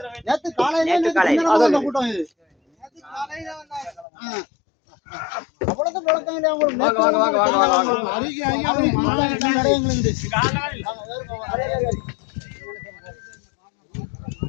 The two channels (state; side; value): drops out; right; at 4.0 s